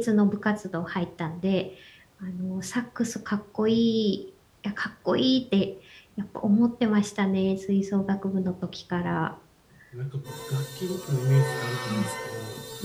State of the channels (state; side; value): identical; both; correlation 1.00